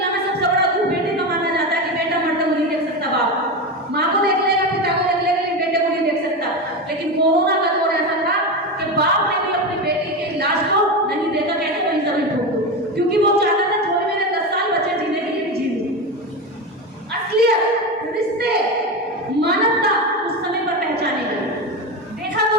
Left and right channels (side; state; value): both; normal; correlation 0.18